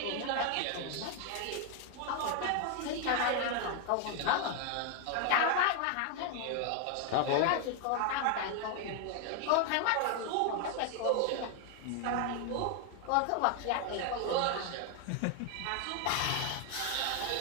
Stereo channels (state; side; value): different; both; correlation 0.00